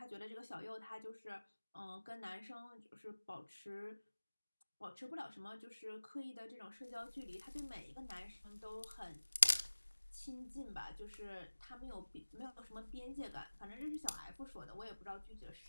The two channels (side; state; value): both; inverted; correlation -1.00